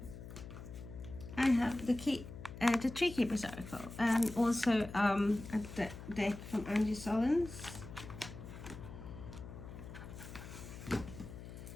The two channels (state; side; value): noise; left; hum, 12 dB below the sound